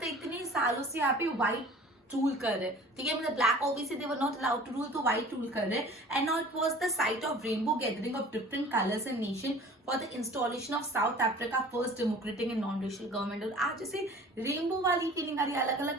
इतने सालों से यहाँ पे white रूल कर रहे, ठीक है, मतलब black obviously they were not allowed to rule, तो व्हाइट रूल कर रहे. And now it was the site of rainbow gathering of different colours and nation for the installation of South Africa first democratic and non racial government. और आज जैसे rainbow वाली feeling आ रही है, अलग अलग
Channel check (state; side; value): normal; both; correlation 0.46